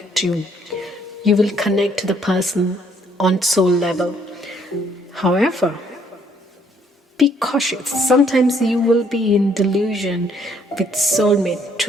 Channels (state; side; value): normal; both; correlation 0.66